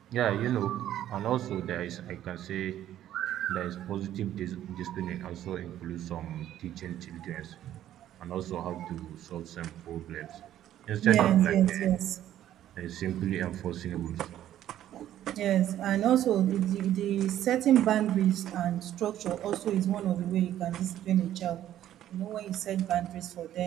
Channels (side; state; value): left; quieter; 12.0 dB